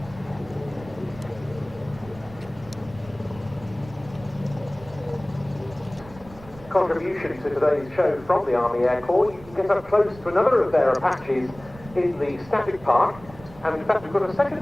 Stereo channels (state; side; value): noise; right; rumble, 19 dB below the sound